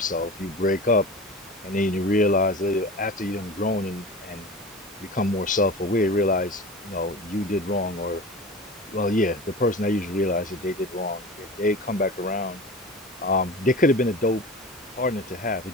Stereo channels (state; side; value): normal; both; correlation 0.33